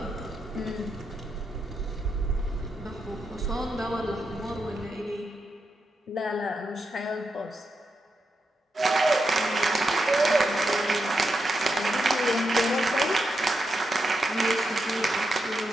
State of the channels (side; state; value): both; normal; correlation 0.85